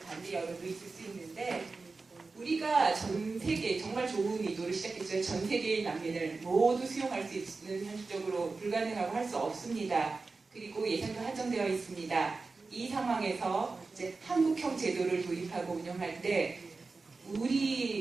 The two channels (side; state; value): left; quieter; 4.0 dB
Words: 여론도 있을 수 있는데 우리가 전 세계 정말 좋은 의도를 시작했죠. 전 세계의 난민을 모두 수용할 수 있는 현실적으로 불가능하고 할 수 없습니다. 그리고 예산도 한정되어 있습니다. 이 상황에서 이제 한국형 제도를 도입하고 운영할 때